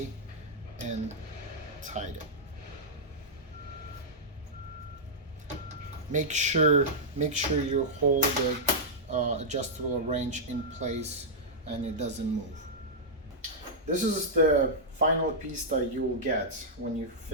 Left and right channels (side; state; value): both; normal; correlation -0.09